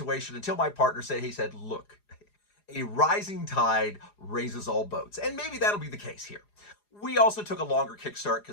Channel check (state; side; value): late; right; 4.9 ms